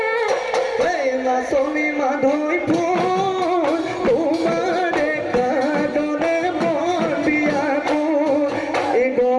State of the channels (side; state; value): both; identical; correlation 1.00